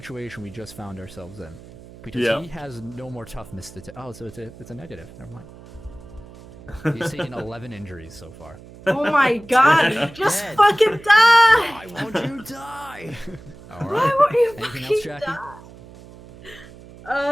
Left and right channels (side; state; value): right; noise; hum, 19 dB below the sound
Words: we just found ourselves in. Because he has no more toughness to... Oh, so it's a negative. Never mind. He's taken 11 injuries so far. Oh my god! Just Dead. fucking die! Why won't you die? All Why right. won't you Anything fucking else, Jackie?